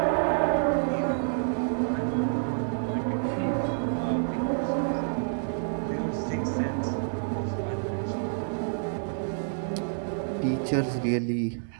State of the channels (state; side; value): silent; left; digital silence